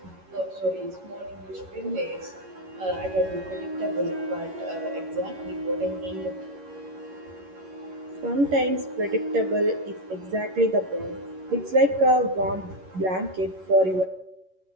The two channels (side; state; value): left; late; 11 ms